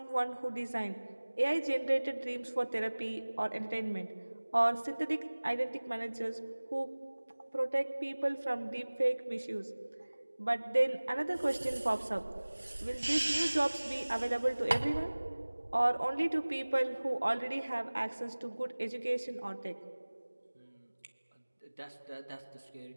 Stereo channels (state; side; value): inverted; both; correlation -1.00